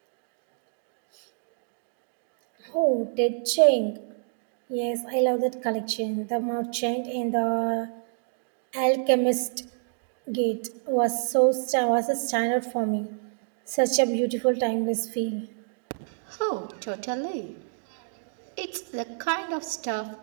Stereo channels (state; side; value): silent; left; digital silence